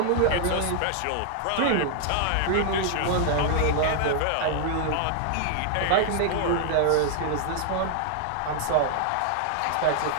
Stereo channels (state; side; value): different; both; correlation 0.00